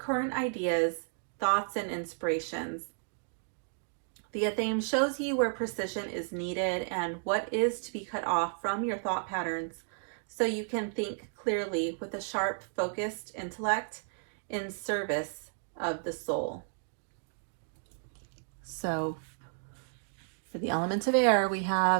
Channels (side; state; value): left; silent; digital silence